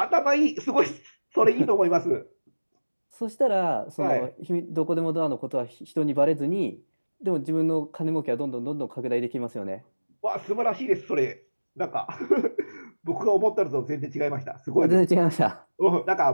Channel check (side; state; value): both; inverted; correlation -1.00